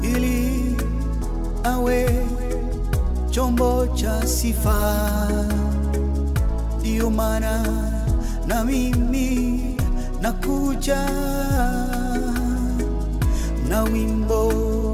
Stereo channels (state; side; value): identical; both; correlation 1.00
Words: ili awe chombo cha sifa. Ndiyo maana na mimi nakuja na wimbo